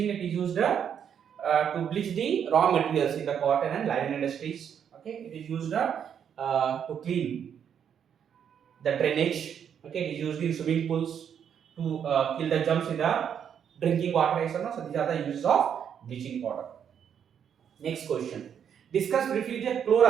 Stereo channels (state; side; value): quieter; left; 8.3 dB